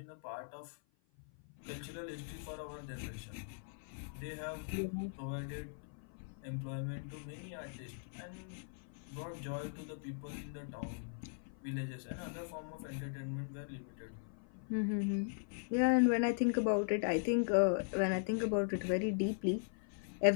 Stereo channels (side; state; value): right; silent; 51 dB below the other